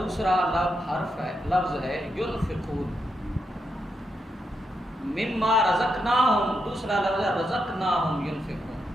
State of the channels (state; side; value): normal; both; correlation 0.83